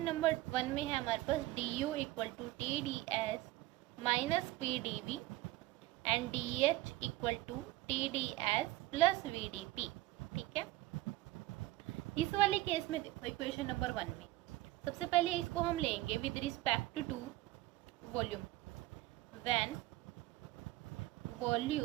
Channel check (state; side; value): quieter; left; 17.8 dB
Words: नंबर 1 में है हमारे पास D U equal to T D S minus P D V and D H equal to T D S plus V D P. ठीक है, इस वाले केस में देखो इक्वेशन नंबर 1 में सबसे पहले इसको हम लेंगे with respect to volume. When